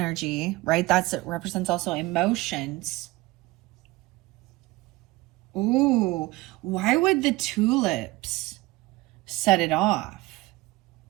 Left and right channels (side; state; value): left; quieter; 20.6 dB